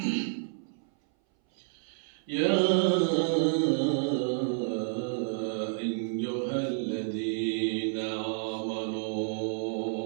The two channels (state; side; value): silent; left; 58 dB below the other